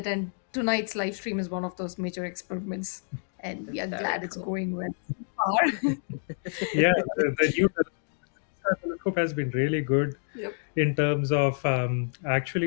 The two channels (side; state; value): right; silent; digital silence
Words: and tonight's live stream is one of those major experiments, and we are glad it's going well so far. Yeah, the new telescope has been really good Yep. in terms of